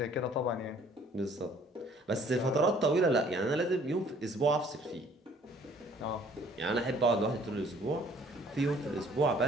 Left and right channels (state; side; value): normal; both; correlation 0.58